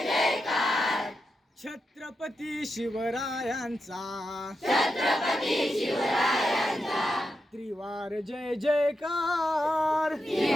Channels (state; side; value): normal; both; correlation 0.87